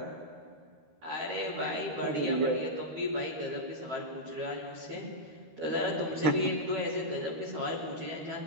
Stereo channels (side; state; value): left; late; 13 ms